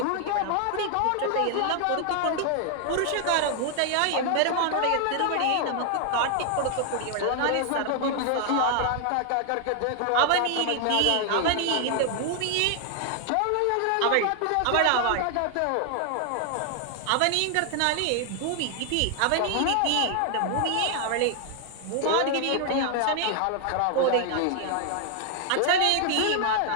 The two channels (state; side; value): different; both; correlation 0.00